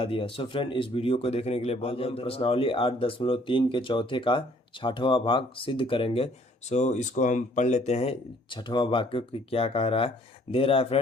दिया। सो फ्रेंड, इस वीडियो को देखने के लिए बहुत बहुत प्रश्नावली 8.3 के चौथे का 6वां भाग सिद्ध करेंगे। सो इसको हम पढ़ लेते हैं 6वां भाग को क्या कह रहा है। दे रहा है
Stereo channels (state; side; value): normal; both; correlation 0.60